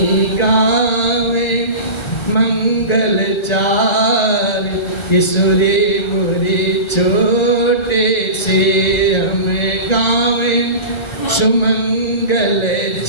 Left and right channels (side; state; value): right; late; 1.3 ms